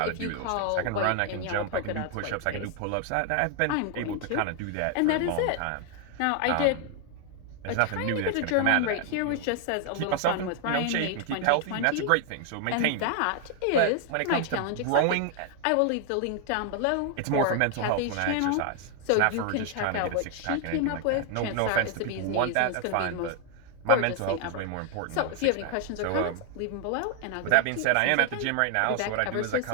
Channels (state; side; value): different; both; correlation 0.00